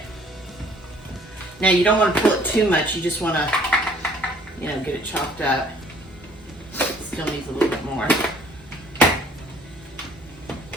Now you don't want to pull it too much. You just want to, you know, get it chopped up. Still needs a little bit more.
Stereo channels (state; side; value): normal; both; correlation 0.58